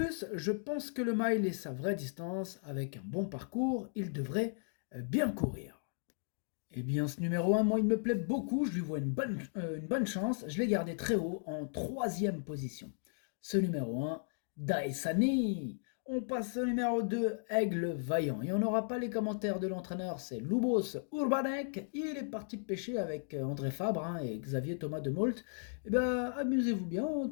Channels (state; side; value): silent; right; digital silence